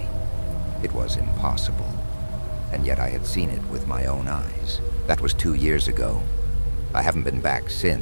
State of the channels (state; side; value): inverted; both; correlation -1.00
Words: It was impossible. And yet I had seen it with my own eyes. That was 2 years ago. I haven't been back